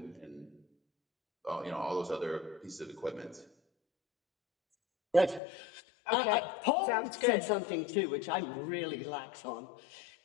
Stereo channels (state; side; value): drops out; right; at 5.4 s